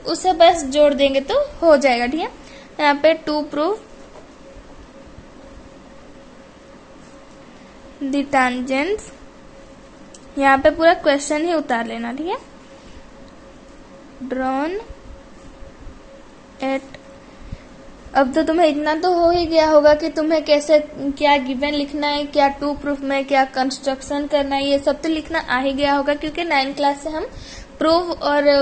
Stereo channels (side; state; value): both; identical; correlation 1.00